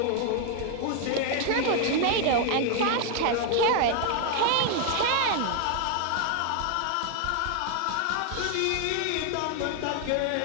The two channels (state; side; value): different; both; correlation 0.00